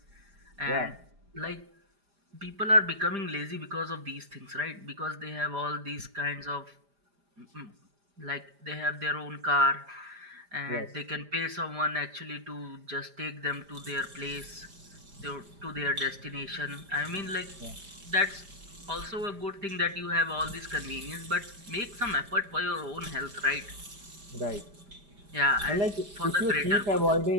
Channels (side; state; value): left; late; 5.0 ms